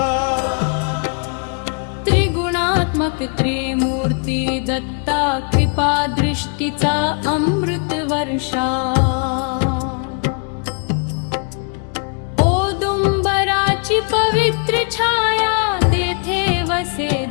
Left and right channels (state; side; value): quieter; right; 39.3 dB